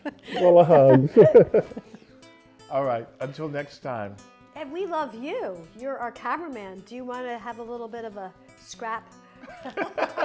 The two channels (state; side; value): identical; both; correlation 1.00